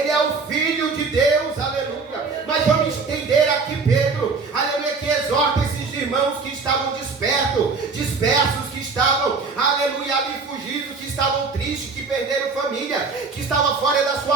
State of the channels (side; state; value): left; quieter; 4.5 dB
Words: é o Filho de Deus. Aleluia. Mas vamos entender aqui Pedro. Aleluia, que exorta esses irmãos que estavam dispersos, que estavam, aleluia, ali fugidos, que estavam tristes, que perderam família, que estavam fora da